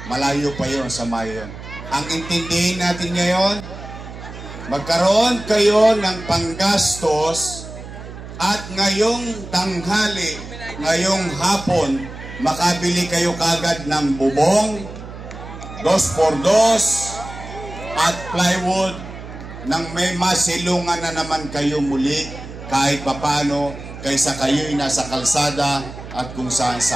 Malayo pa yon sa mayon. Ang intindihin natin ngayon, magkaroon kayo ng panggastos at ngayong tanghali, ngayong hapon, makabili kayo kagad ng bubong, 2x2 at plywood nang may masilungan na naman kayo muli kahit papano kaysa kayo'y nasa kalsada at kung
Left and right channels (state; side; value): noise; right; hum, 12 dB below the sound